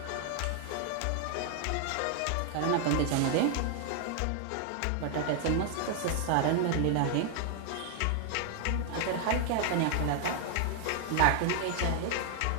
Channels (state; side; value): different; both; correlation 0.00